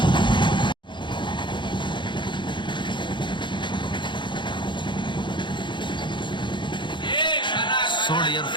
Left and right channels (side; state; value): right; late; 0.23 ms